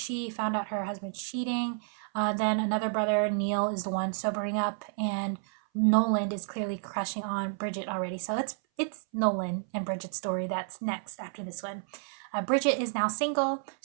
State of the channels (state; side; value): silent; left; 57 dB below the other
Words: found out her husband cheating. Then another brother, Neil, is the one sobering up, and Nolan is clearly crushing on Bridget already. So it's Nolan and Bridget's story that's next after this one. Bridget is now single.